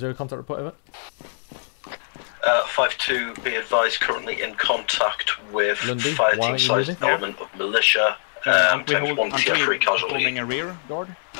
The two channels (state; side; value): silent; right; digital silence